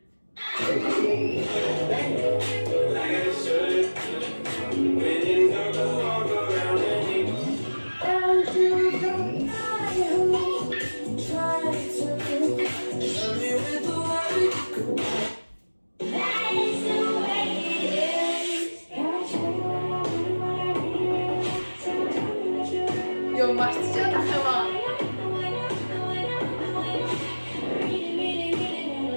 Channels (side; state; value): both; inverted; correlation -1.00